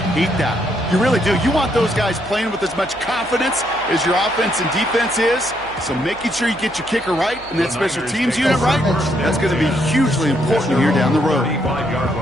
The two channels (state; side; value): noise; right; hum, 22 dB below the sound